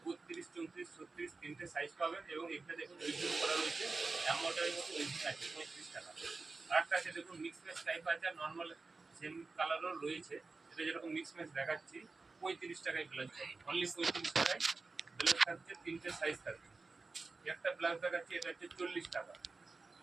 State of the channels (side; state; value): left; quieter; 3.9 dB